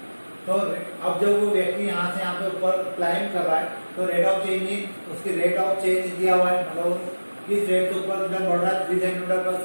तो अब जब वो व्यक्ति यहाँ से यहाँ पे ऊपर क्लाइंब कर रहा है तो रेट ऑफ चेंज, उसकी रेट ऑफ चेंज दिया हुआ है, मतलब किस रेट से ऊपर बढ़ रहा है 3 सेंटीमीटर पर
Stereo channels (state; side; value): inverted; both; correlation -1.00